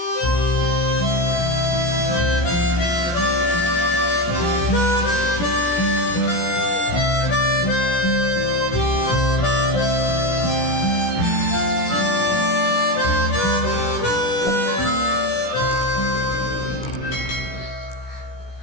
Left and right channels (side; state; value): right; late; 17 ms